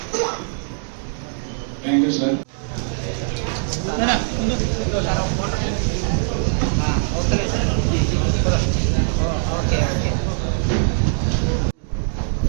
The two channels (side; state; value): left; silent; digital silence